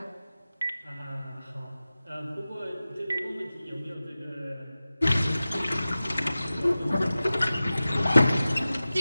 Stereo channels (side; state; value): both; inverted; correlation -0.96